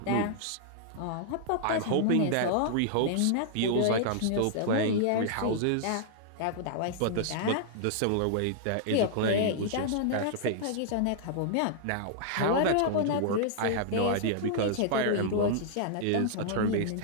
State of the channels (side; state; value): both; different; correlation -0.01